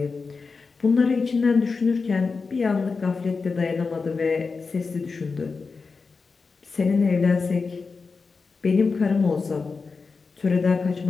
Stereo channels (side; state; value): right; quieter; 4.6 dB